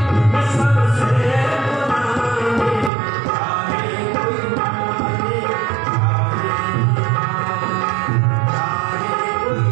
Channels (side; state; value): left; drops out; at 2.9 s